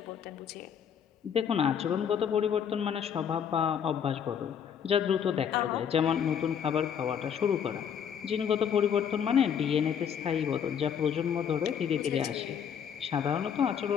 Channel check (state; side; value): quieter; right; 8.1 dB